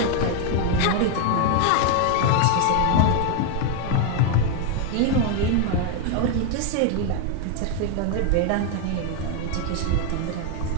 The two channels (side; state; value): both; different; correlation 0.01